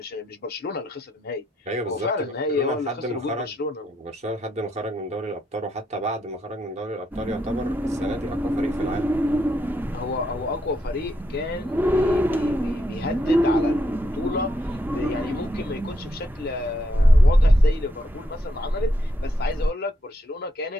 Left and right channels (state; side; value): normal; both; correlation 0.78